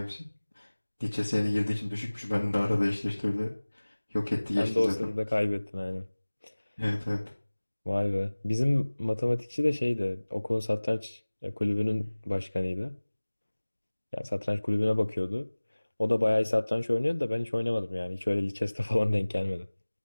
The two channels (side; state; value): both; inverted; correlation -1.00